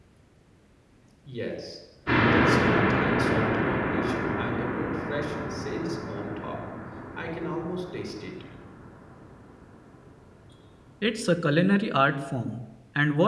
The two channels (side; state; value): both; identical; correlation 1.00